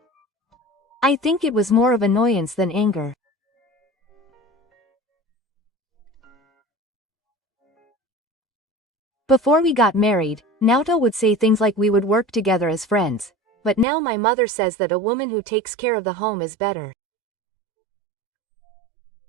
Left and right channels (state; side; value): drops out; left; at 13.9 s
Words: I think it was more of annoyance than anger. Before we got married, Naoto would say things like we would work together as friends, but now my mother says that a woman who takes care of the home is better.